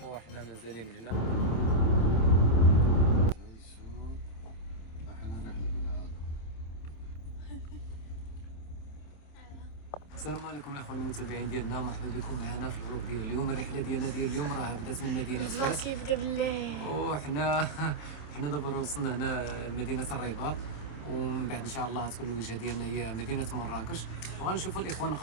وحنا مازالين هنا. السلام عليكم الاخوان المتابعين ديالنا، مرحبا بكم معنا في الفلوق ديال اليوم. الرحله ديالنا ديال اليوم راه بدات من مدينه فاس، كيبدا بالله، وحنا دابا وصلنا هنا لمدينه الرباط، ومن بعد ان شاء الله تكون الوجهه ديالنا هي مدينه مراكش، وغنشوفوا الاخوان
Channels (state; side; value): late; right; 27 ms